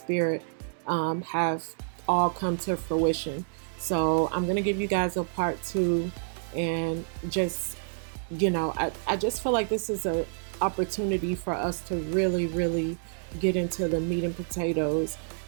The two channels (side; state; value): left; silent; 59 dB below the other